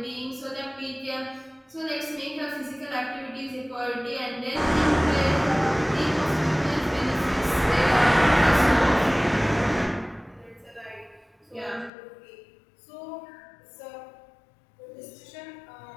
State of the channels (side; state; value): right; drops out; at 11.9 s